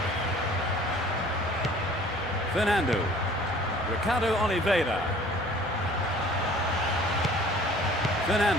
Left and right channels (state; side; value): normal; both; correlation 0.50